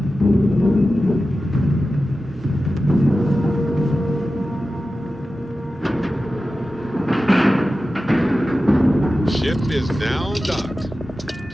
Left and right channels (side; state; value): both; normal; correlation 0.93